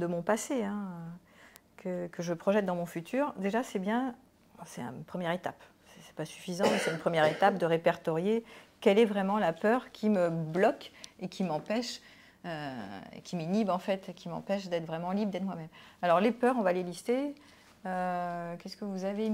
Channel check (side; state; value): both; identical; correlation 1.00